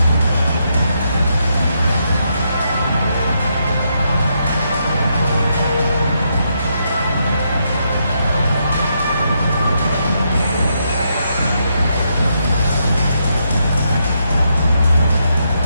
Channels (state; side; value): inverted; both; correlation -0.79